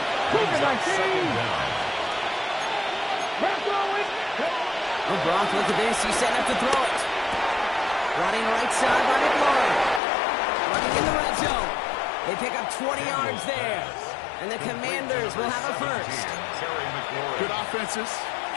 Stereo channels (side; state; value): right; drops out; at 10.0 s